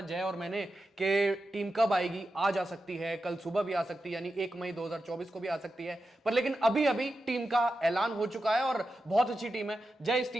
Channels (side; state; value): both; normal; correlation 0.90